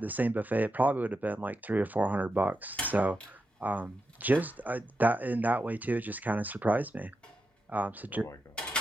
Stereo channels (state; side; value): normal; both; correlation 0.87